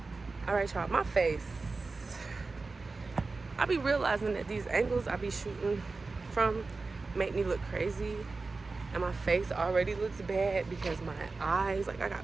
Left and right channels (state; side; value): quieter; left; 3.9 dB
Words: All right, y'all, my face. I be realizing that these angles I be shooting from make me look crazy, and my face already looks bad because my eyes, like I